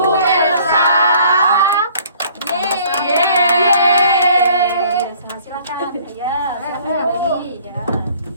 Elsa. Yeay. Silakan. Ya, kembali ya.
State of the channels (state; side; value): inverted; both; correlation -0.56